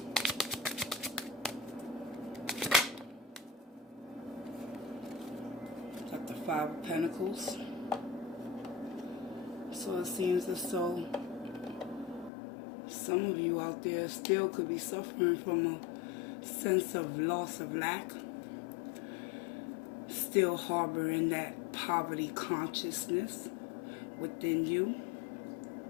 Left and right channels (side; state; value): right; drops out; at 12.3 s